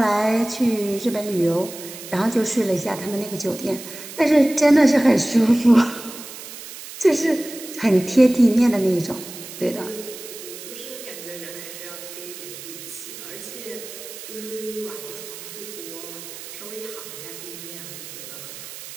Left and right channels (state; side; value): noise; right; hiss, 13 dB below the sound